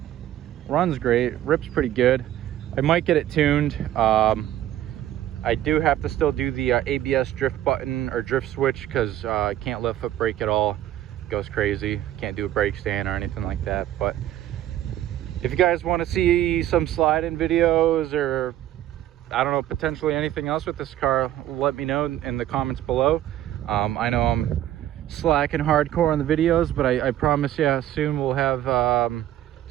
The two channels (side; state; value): left; quieter; 12.8 dB